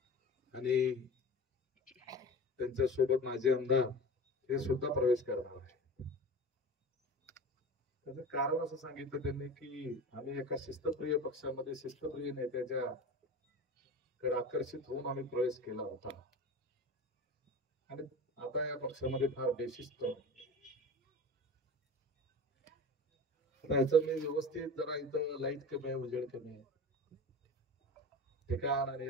आणि त्यांच्या सोबत माझे आमदार हे सुद्धा प्रवेश करणार आहे. त्याचं कारण असं सांगितलं त्यांनी की आम्ही एका शिस्तप्रिय पक्षामध्ये शिस्तप्रिय नेत्याच्या कडे आकर्षित होऊन आम्ही प्रवेश केला होता आणि आता या पक्षामध्ये फार बेशिस्त याचं मी व्यवस्थित जरा इथं लाईट कमी आहे, उजेड कमी आहे, ठिकाण आणि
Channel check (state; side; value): normal; both; correlation 0.33